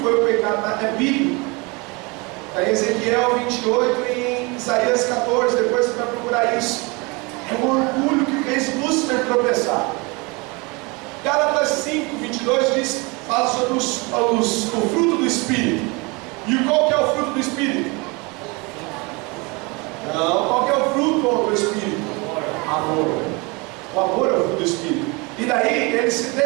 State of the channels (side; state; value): left; quieter; 27.6 dB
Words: foi o pecado, é bíblico. Está em Ezequiel 28 e em Isaías 14, depois você vai procurar isso. É o orgulho que fez Lúcifer tropeçar. Gálatas 5, 22 fala sobre o fruto do Espírito. E qual que é o fruto do Espírito? Não, qual que é o fruto do Espírito? Amor. O amor é o fruto do Espírito. E daí ele se